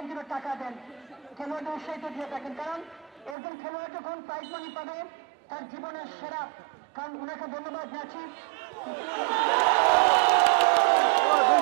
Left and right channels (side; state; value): left; drops out; at 3.4 s